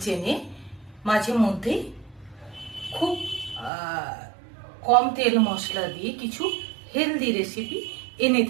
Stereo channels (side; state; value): left; drops out; at 3.7 s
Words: মাঝে মধ্যে খুব কম তেল মশলা দিয়ে কিছু হেলদি রেসিপি এনে